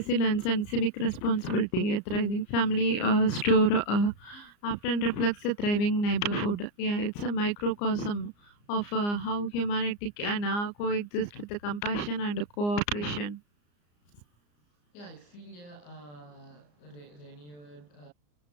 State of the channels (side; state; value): right; late; 34 ms